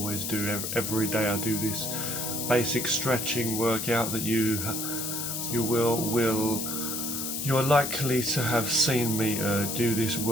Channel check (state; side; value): noise; left; hiss, 3 dB below the sound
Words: do. Every day I do this basic stretching workout that you are likely to have seen me do this